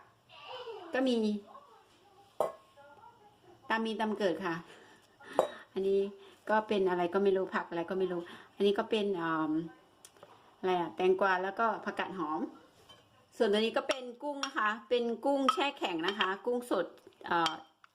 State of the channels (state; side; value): identical; both; correlation 1.00